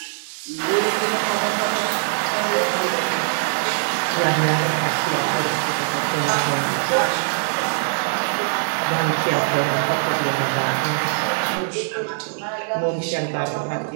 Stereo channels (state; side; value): silent; left; digital silence